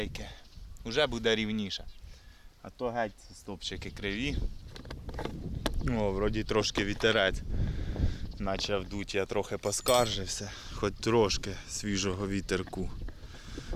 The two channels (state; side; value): identical; both; correlation 1.00